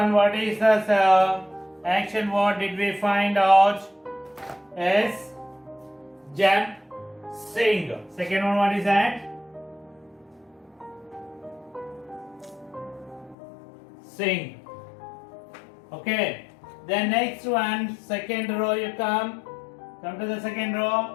what is the action word did we find out? Is jump, sing. Second one, what is that? Sing. Okay. Then next one, second row you come to the second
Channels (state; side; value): drops out; right; at 13.4 s